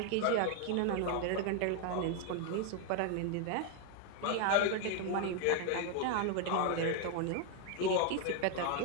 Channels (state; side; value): different; both; correlation 0.01